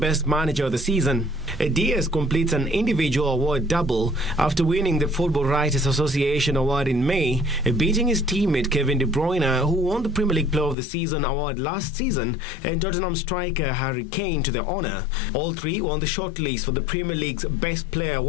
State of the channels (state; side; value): drops out; right; at 10.8 s